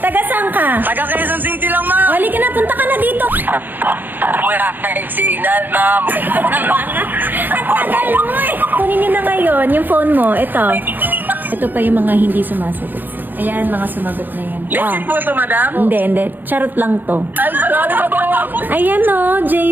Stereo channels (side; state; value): left; late; 0.090 ms